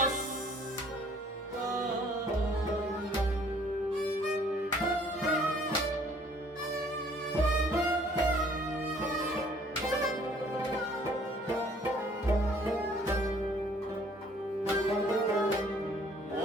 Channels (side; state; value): both; normal; correlation 0.58